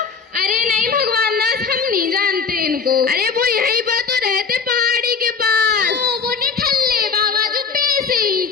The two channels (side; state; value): right; quieter; 5.6 dB